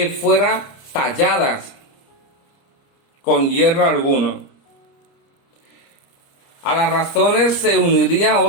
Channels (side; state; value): right; late; 30 ms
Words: fueran talladas con hierro alguno. A las razones se unirían